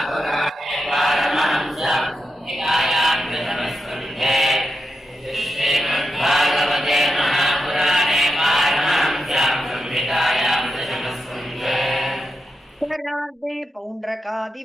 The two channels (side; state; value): both; normal; correlation 0.87